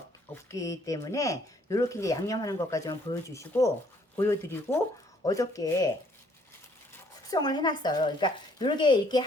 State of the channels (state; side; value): normal; both; correlation 0.64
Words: 때문에 이렇게 이제 양념하는 것까지만 보여드리고 어저께 숙성을 해놨어요. 그러니까 이렇게